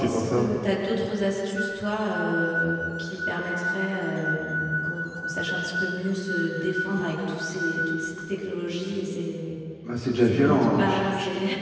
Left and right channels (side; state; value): both; identical; correlation 1.00